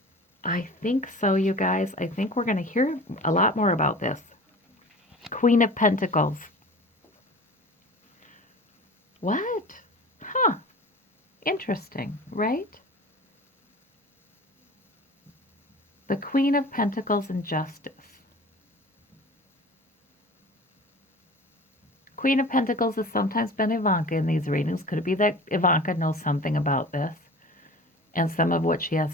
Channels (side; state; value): both; normal; correlation 0.39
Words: I think so, you guys. I think we're going to hear a lot more about this. Queen of Pentacles. What? Huh. Interesting, right? The Queen of Pentacles and Justice. Queen of Pentacles has sometimes been Ivanka in these readings. Could it be that Ivanka knows something about this? And some of what she has